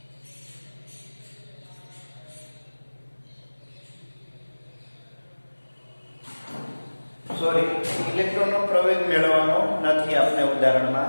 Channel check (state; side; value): inverted; both; correlation -1.00